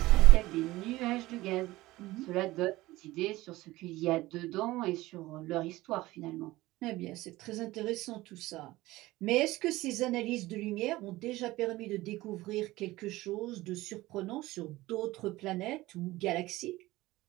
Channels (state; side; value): quieter; left; 18.4 dB